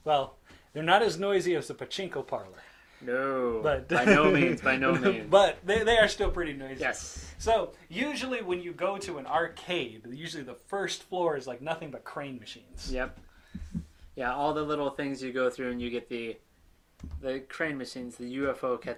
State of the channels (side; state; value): both; identical; correlation 1.00